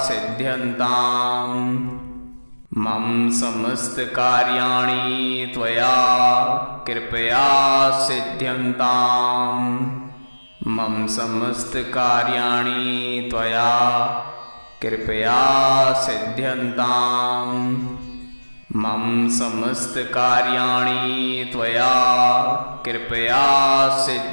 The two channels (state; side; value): inverted; both; correlation -1.00